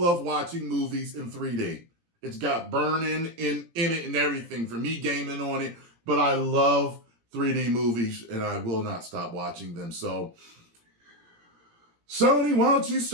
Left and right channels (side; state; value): left; late; 17 ms